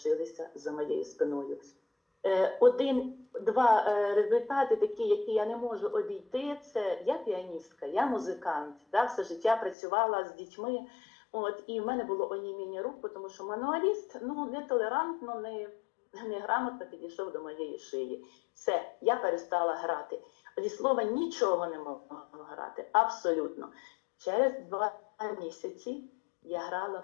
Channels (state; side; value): drops out; right; at 9.8 s